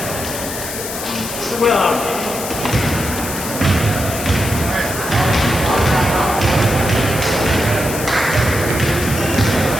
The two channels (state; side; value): noise; left; hiss, 7 dB below the sound